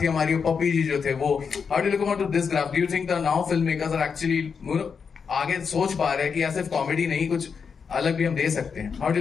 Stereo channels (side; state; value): right; quieter; 6.0 dB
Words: थी हमारी पप्पी जी जो थे वो। How do you look about this graph? Do you think the now film makers are actually आगे सोच पा रहे हैं कि सिर्फ कॉमेडी नहीं कुछ अलग भी हम दे सकते हैं? How do you